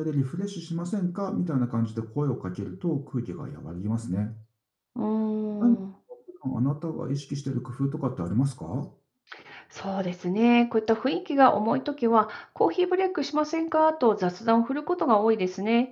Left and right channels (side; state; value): both; identical; correlation 1.00